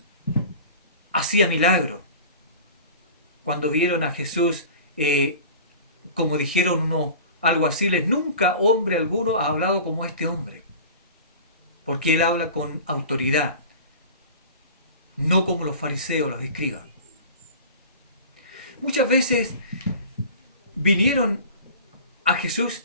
hacía milagros, cuando vieron a Jesús, como dijeron uno, algo así, nunca hombre alguno ha hablado como este hombre, porque él habla con autoridad, no como los fariseos, los escribas. Muchas veces vinieron a Jesús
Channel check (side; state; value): both; inverted; correlation -0.39